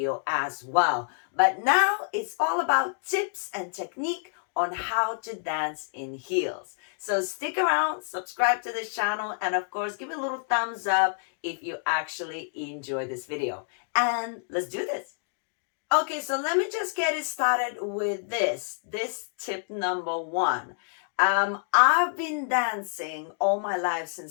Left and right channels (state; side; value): silent; right; digital silence